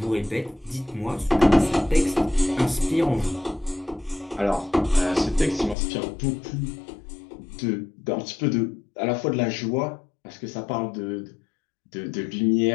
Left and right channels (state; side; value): drops out; right; at 5.8 s